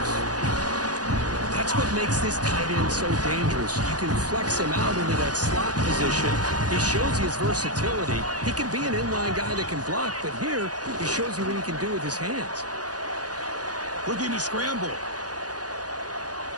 That's what makes this tight end so dangerous. You can flex him out into that slot position. He shows you his versatility. He can be an inline guy that can block, but here he shows you what he can do with his hands. Looking to scramble.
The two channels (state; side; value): late; left; 0.68 ms